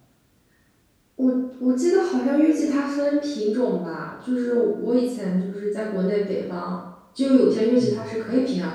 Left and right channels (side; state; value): both; identical; correlation 1.00